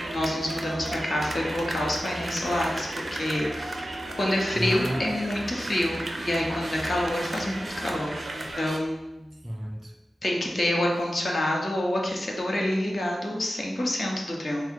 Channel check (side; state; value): both; normal; correlation 0.93